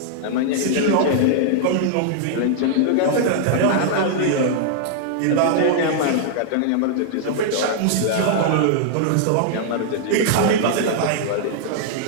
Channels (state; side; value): different; both; correlation -0.01